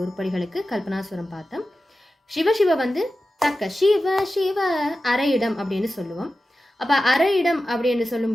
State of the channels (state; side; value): normal; both; correlation 0.93